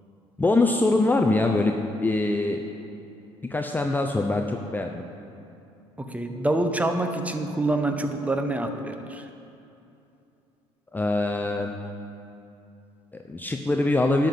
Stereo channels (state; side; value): normal; both; correlation 0.81